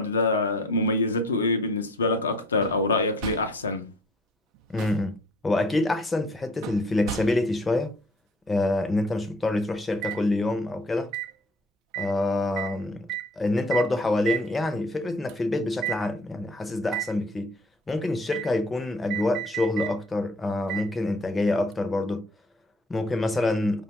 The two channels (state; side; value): normal; both; correlation 0.55